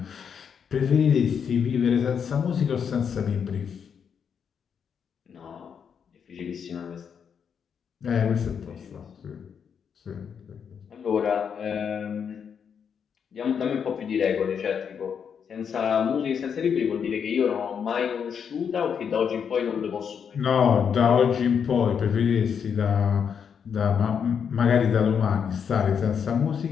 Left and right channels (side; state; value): right; quieter; 7.2 dB